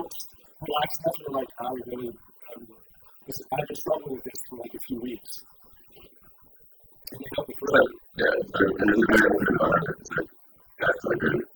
relaxed enough to be like, I really am, I've been struggling with this for like a few weeks. And they helped me through it. It's a very open environment. It's like, I guess, like very...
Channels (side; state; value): both; identical; correlation 1.00